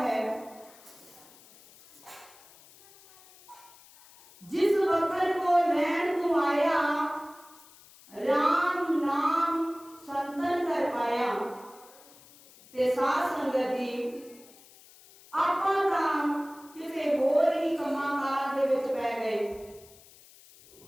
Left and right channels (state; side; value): noise; left; hiss, 24 dB below the sound